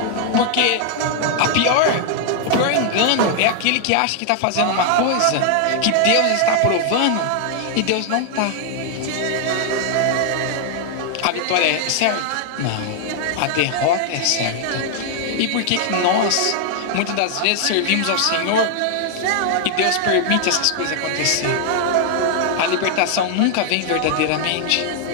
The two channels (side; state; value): both; different; correlation 0.00